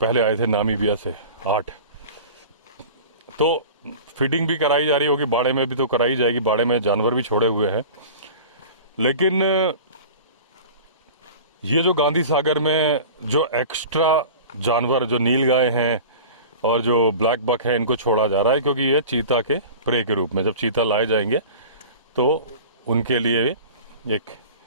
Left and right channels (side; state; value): both; inverted; correlation -0.38